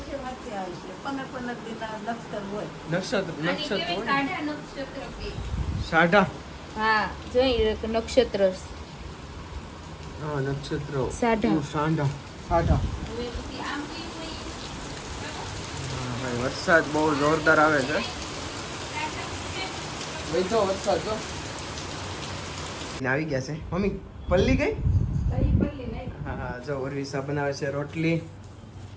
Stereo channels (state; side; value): identical; both; correlation 1.00